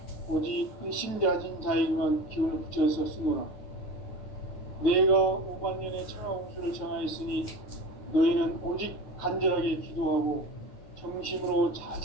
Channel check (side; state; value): right; late; 9.1 ms